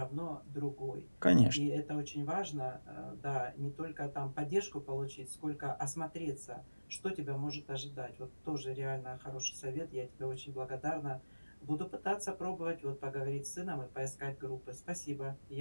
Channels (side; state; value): both; inverted; correlation -1.00